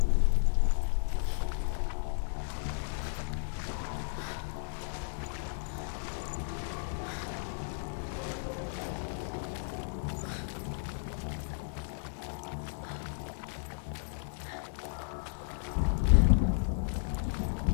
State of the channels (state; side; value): silent; right; 55 dB below the other